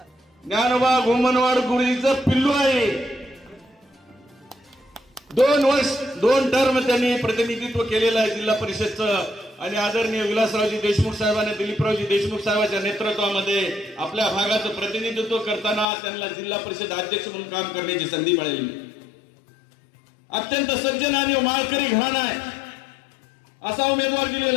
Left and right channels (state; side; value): drops out; right; at 15.9 s